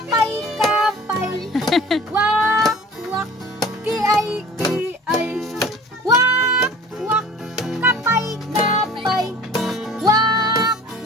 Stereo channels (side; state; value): both; normal; correlation 0.45